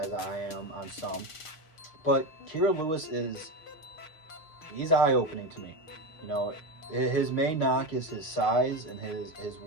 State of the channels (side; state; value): right; late; 6.5 ms